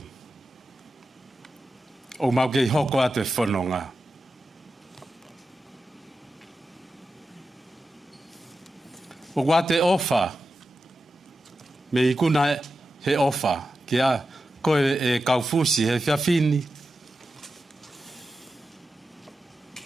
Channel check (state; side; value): normal; both; correlation 0.91